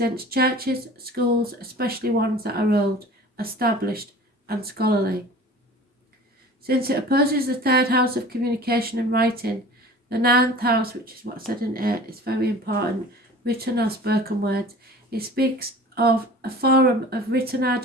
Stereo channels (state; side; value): normal; both; correlation 0.42